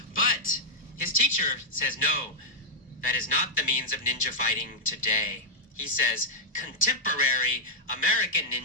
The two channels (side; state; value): both; normal; correlation -0.06